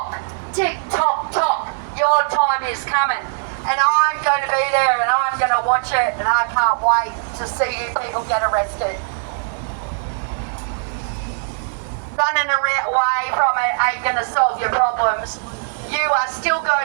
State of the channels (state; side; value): silent; left; 65 dB below the other